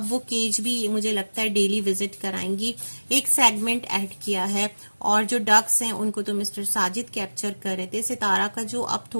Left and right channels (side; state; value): both; inverted; correlation -1.00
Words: वो केज भी मुझे लगता है डेली विजिट कराएंगी। एक सेगमेंट ऐड किया है और जो डक्स हैं उनको तो मिस्टर साजिद कैप्चर कर रहे थे। सितारा का जो अब